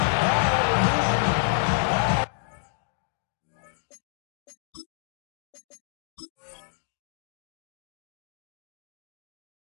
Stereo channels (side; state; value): right; silent; digital silence